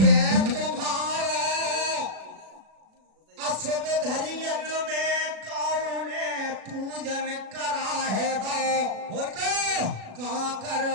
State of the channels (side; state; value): left; late; 36 ms